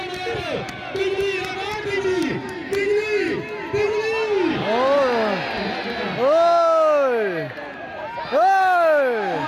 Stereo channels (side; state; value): both; identical; correlation 1.00